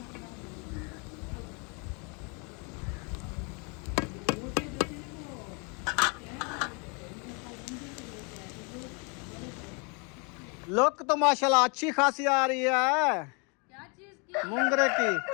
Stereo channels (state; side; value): quieter; right; 33.7 dB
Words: लुक तो माशाल्लाह अच्छी खासी आ रही है। क्या चीज की? मुंगरे की,